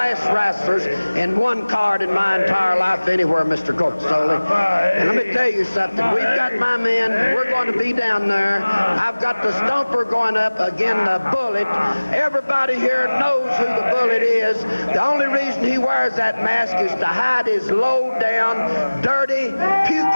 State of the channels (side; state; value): both; inverted; correlation -1.00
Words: wrestlers in one card in my entire life anywhere, Mr. Corpusoli. And let me tell you something. We've got my men. We're going to be down there. I've got the Stumper going up against the Bullet. Everybody here knows who the Bullet is. The only reason he wears that mask is to hide his low-down, dirty,